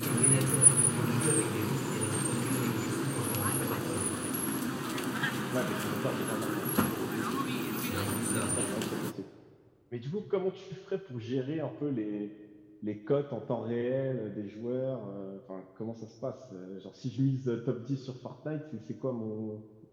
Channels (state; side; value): identical; both; correlation 1.00